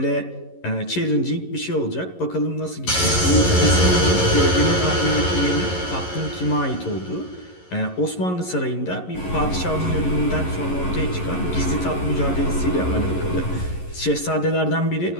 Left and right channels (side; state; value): right; late; 11 ms